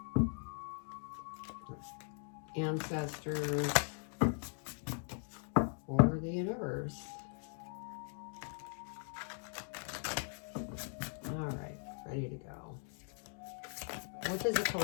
ancestors, or the universe. All right, ready to go. What does the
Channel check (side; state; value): right; silent; 51 dB below the other